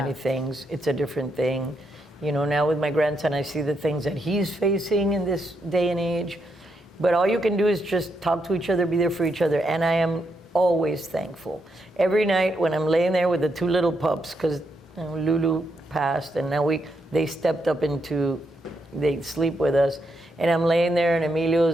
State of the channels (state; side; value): normal; both; correlation 0.80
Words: things, it's a different thing. You know, now with my grandson, I see the things that he's facing in this day and age. But all you can do is just talk to each other, be there for each other. And I am always thankful. Every night when I'm laying there with the two little pups, because Lulu passed, and now they stepped up they sleep with us. And I'm laying there and